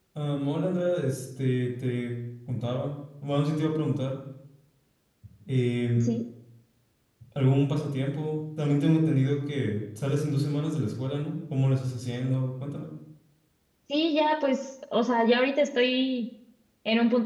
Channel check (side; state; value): both; identical; correlation 1.00